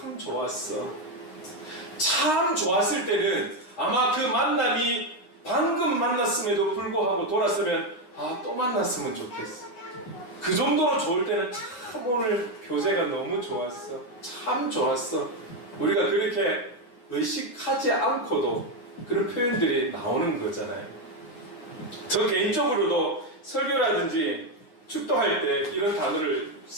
좋았어. 참 좋았을 때는 아마 그 만남이 방금 만났음에도 불구하고 돌았으면 또 만났으면 좋겠어. 그 정도로 좋을 때는 참 오늘 교제가 너무 좋았어. 참 좋았어. 우리가 그렇게 의식하지 않고도 그런 표현들이 나오는 거잖아요. 저 개인적으로도 설교라든지 축도할 때 이런 단어를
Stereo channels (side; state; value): right; late; 9.6 ms